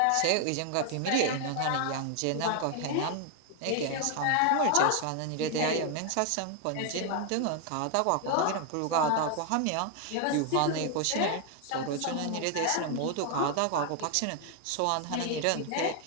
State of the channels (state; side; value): different; both; correlation 0.01